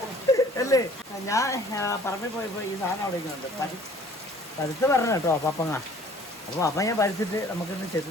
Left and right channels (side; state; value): both; normal; correlation 0.53